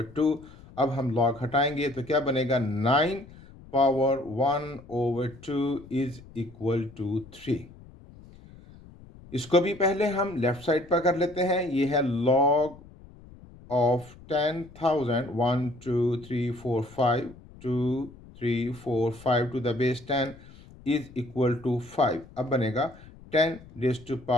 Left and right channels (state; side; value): noise; left; rumble, 21 dB below the sound